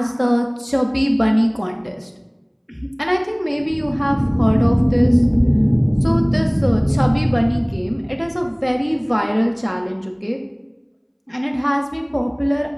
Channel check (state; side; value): identical; both; correlation 1.00